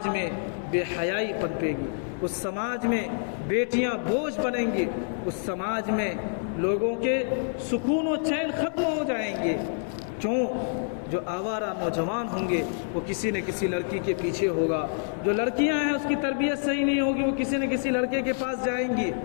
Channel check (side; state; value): right; silent; 60 dB below the other